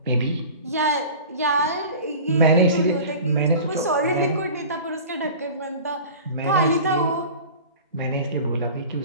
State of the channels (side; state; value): both; inverted; correlation -0.38